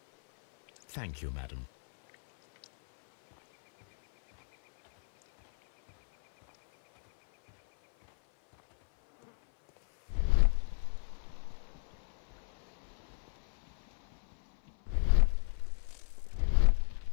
Thank you, madam.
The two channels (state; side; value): silent; right; 55 dB below the other